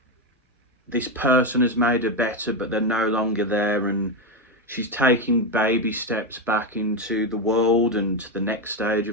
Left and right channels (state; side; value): normal; both; correlation 0.09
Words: this person has made her better, but they're no longer there, and she's taking baby steps back into the world and to the next stage